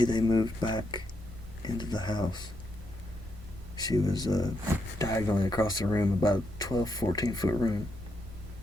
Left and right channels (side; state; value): both; normal; correlation 0.80